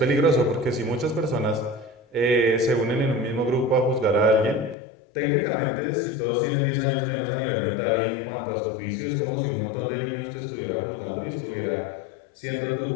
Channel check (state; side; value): drops out; right; at 4.8 s